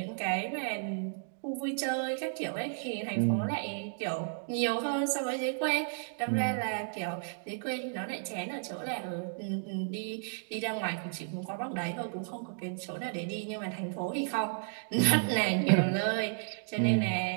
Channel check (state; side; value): silent; left; digital silence